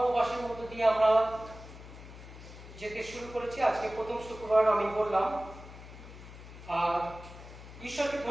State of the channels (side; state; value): left; noise; hum, 15 dB below the sound